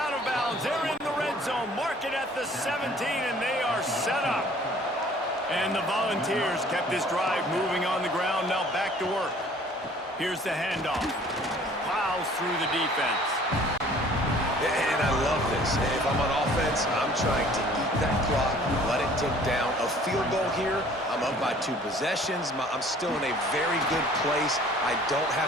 of bounds. They're in the red zone. Mark it at the 17, and they are set up. And the Volunteers kept this drive moving on the ground. Now back to work. Here's the handoff. Plows through the defense. And I love this. If I'm on offense, I'm trying to eat that clock, let it tick down. A field goal here, I'm up by 2 possessions. I'm still in a very good place. I don't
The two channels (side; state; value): both; normal; correlation 0.53